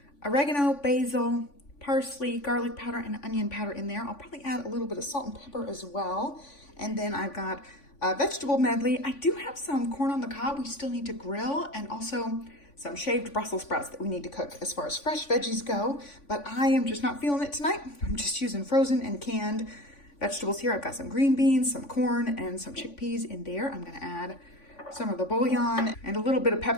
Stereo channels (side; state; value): right; late; 3.5 ms